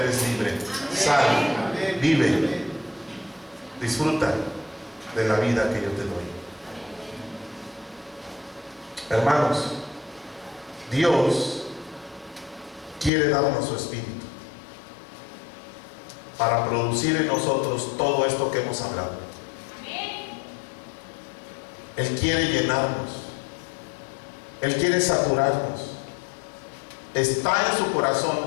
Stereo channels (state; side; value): drops out; right; at 13.1 s